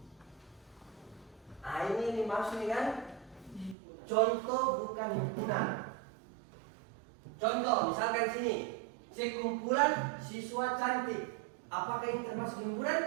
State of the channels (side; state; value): left; drops out; at 3.8 s